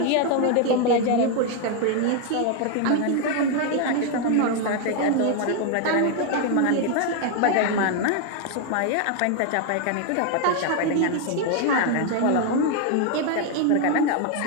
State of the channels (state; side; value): different; both; correlation 0.01